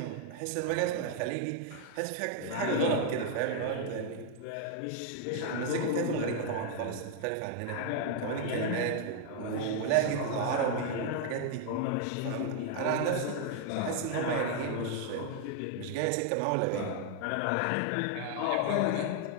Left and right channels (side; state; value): both; different; correlation 0.00